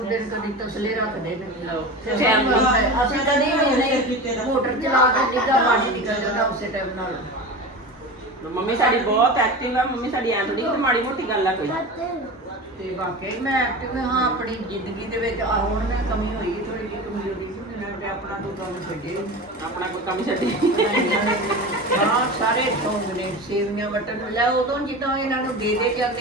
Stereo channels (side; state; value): both; normal; correlation 0.30